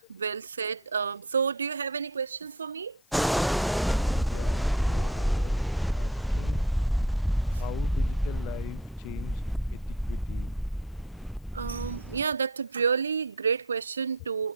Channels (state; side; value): normal; both; correlation 0.44